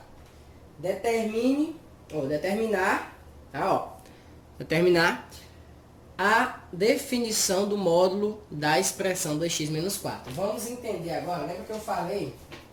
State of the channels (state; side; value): identical; both; correlation 1.00